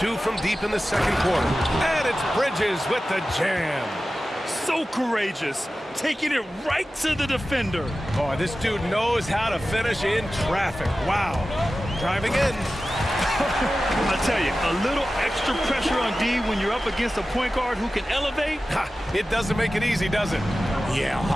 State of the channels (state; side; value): normal; both; correlation 0.95